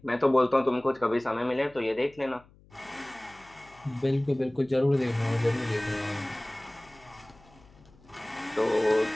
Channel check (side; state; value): left; noise; hum, 27 dB below the sound